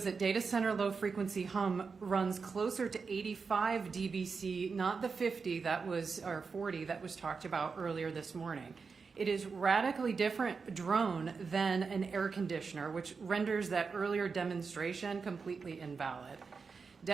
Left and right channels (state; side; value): quieter; left; 5.0 dB